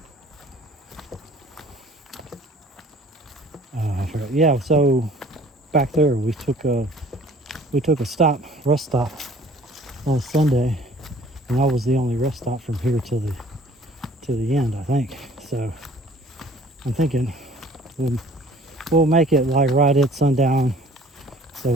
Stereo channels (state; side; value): normal; both; correlation 0.52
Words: forgot. Yeah, so back there we took a rest stop last Sunday, and that was the only rest stop from here to the end, I think. So I'm thinking we'll make it like right at sundown, so